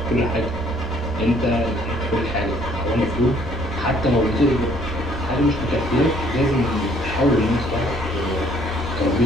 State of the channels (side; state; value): both; normal; correlation 0.62